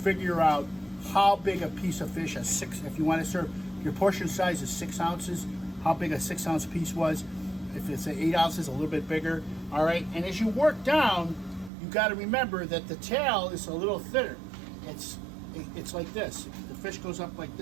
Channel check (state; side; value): drops out; left; at 11.7 s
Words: out how big a piece of fish, if you want to serve, your portion size is 6 ounces, how big a 6-ounce piece was. If it's 8 ounces, a little bit bigger. All right, and as you work down, you got to remember that the tail is a little thinner. It's like this. The fish goes up like